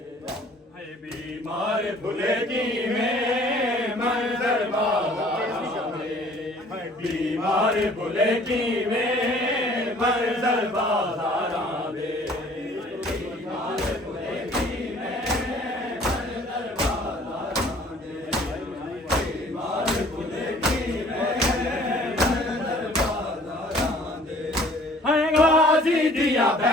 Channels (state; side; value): normal; both; correlation 0.54